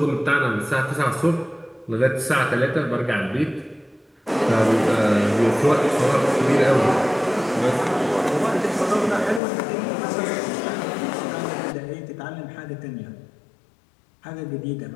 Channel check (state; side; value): drops out; right; at 9.4 s